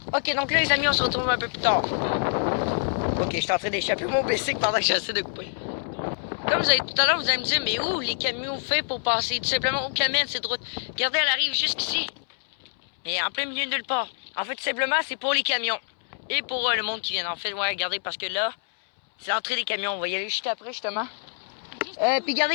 Ok, donc là, les amis, on se retrouve un peu plus tard. Ok, je suis en train d'échapper mon bicycle pendant que j'essaie de couper. Comme vous avez tout à l'heure, vous allez me dire, mais où les camions fait pour passer? Tout simplement, aucun mène cette route. Regardez, elle arrive jusqu'ici. Et en plein milieu de nulle part. En fait, tout simplement, c'est pour les camions. Et pour le monde qui vient. En fait, ouais, regardez, parce que là, c'est l'entrée des camions. On va y aller juste après, justement. Puis regardez,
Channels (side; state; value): right; silent; 61 dB below the other